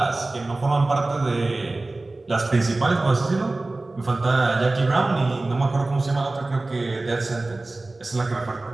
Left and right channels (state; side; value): quieter; left; 3.0 dB